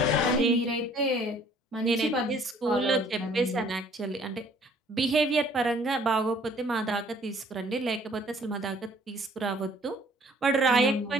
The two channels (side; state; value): both; normal; correlation 0.58